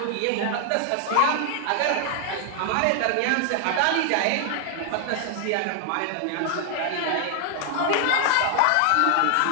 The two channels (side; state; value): both; different; correlation 0.00